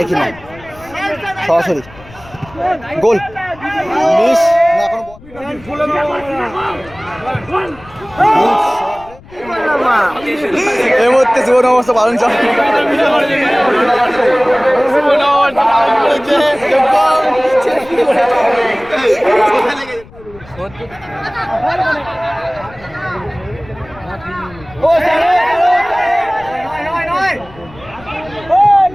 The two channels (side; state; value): left; noise; rumble, 22 dB below the sound